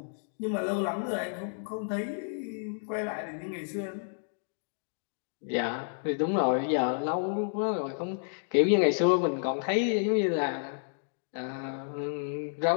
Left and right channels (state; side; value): silent; right; digital silence